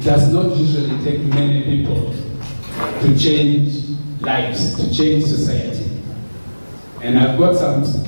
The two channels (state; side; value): inverted; both; correlation -1.00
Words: does not usually take many people to change lives, to change society. And I've got some